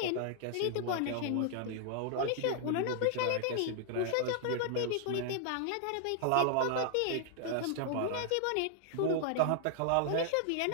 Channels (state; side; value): different; both; correlation 0.00